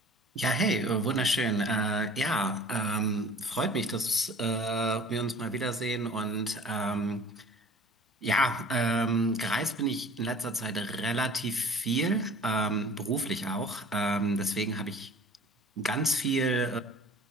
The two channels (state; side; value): normal; both; correlation 0.46